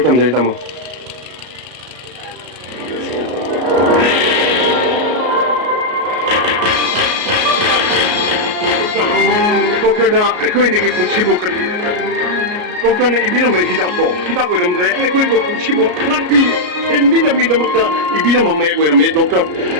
tama dali tama. Doktorna ekoinigi punchibu kan. Doktorna ibina mai hidako ramdre ekoinigi punchibu lakbi ibina mi damakta ibina mamma ko rame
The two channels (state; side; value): late; left; 33 ms